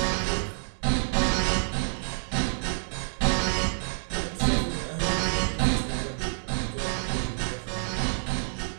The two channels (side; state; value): left; silent; digital silence